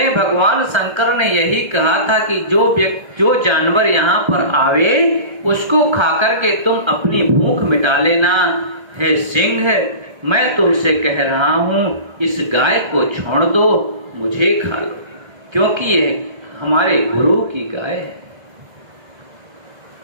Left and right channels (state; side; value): late; left; 1.3 ms